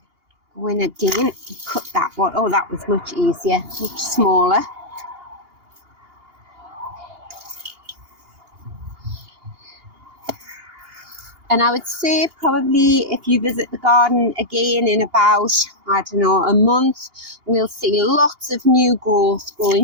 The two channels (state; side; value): late; left; 2.8 ms